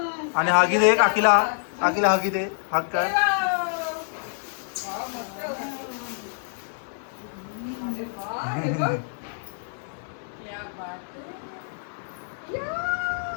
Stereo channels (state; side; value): silent; right; 61 dB below the other